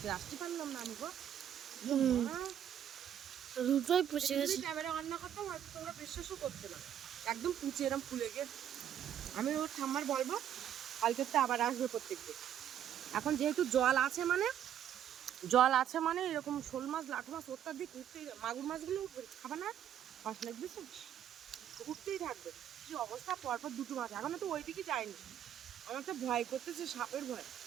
আসতে পারলাম না আমি গো। হুম, মা, দুটোই পচে এটা যদি গেছে। ক্যামেরা অন না করতাম হয়তো তোমরা বিশ্বাসও করতে না। একদম পুচে এরম ফুলে গিয়ে, আমি ওর ঠাম্মার বলবো কালকে তো আবার আসবে প্রত্যেকদিন। এখন যেহেতু জল আছে মানে, জল আছে মানে এরকম শোল মাছ লাঠু মাছ অত্যাধিক উঠতেই, মাগুর মাছগুলো উঠবে খাবে না, মাছ লাগবে উঠতেই থাকবে। কি অবস্থা, পরপর দুটো মাছ, এখনো তো ওই দিকে যায়নি। আমার তো ভয় করতেছে, সাপের ভয়,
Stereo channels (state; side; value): quieter; left; 10.0 dB